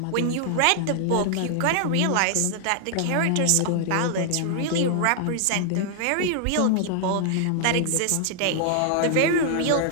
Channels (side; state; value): both; different; correlation 0.00